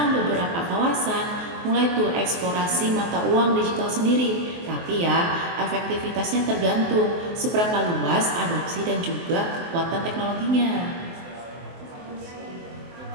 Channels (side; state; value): left; late; 23 ms